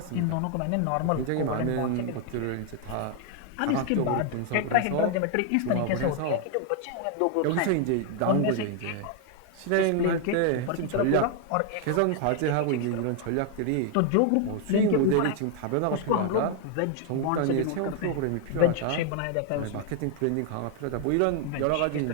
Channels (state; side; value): different; both; correlation 0.00